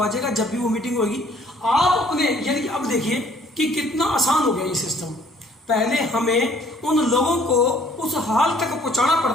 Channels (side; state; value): both; normal; correlation 0.59